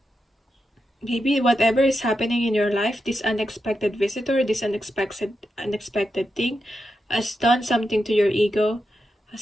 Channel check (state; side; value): normal; both; correlation 0.87